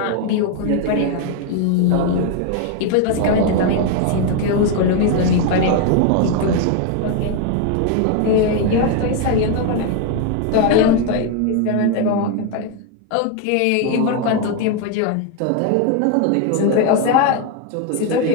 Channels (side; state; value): both; different; correlation 0.01